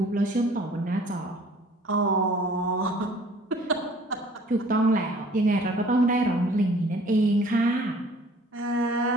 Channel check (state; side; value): normal; both; correlation 0.52